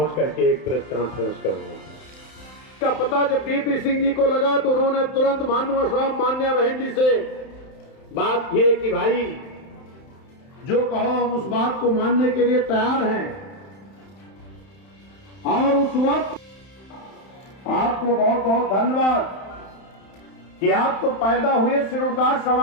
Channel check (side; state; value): right; late; 31 ms